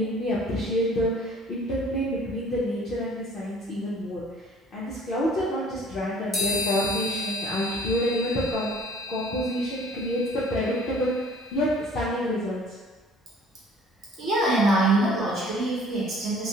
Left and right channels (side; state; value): both; normal; correlation 0.52